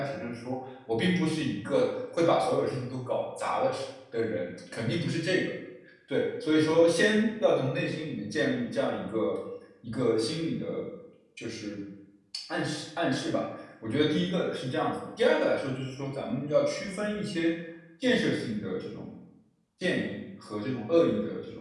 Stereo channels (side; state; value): both; identical; correlation 1.00